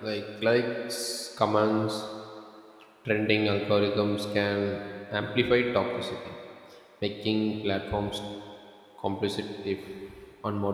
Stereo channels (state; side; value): identical; both; correlation 1.00